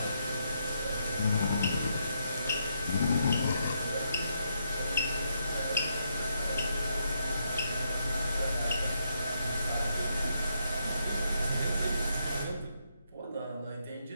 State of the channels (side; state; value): both; inverted; correlation -0.78